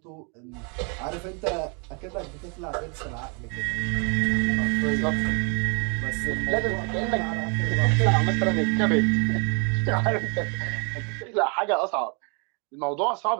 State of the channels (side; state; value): left; quieter; 35.0 dB